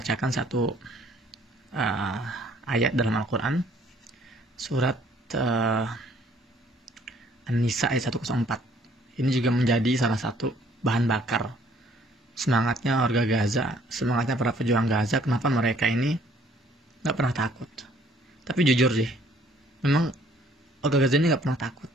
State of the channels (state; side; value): normal; both; correlation 0.61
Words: satu ayat dalam Al-Quran, surat An-Nisa ayat 104. Ini juga menjadi salah satu bahan bakar semangatnya warga Gaza, semangatnya para pejuang Gaza. Kenapa mereka ini nggak pernah takut? Tapi jujur sih, memang warga Gaza ini nggak pernah takut.